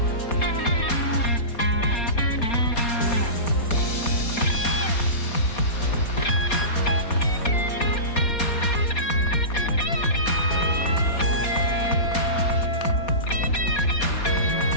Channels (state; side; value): late; right; 4.2 ms